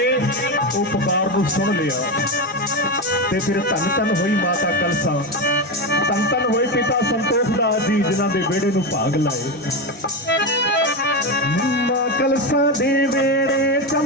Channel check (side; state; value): both; normal; correlation 0.14